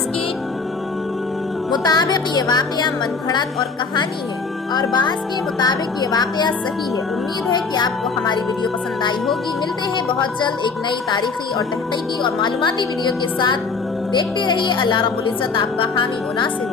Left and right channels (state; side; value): quieter; right; 4.7 dB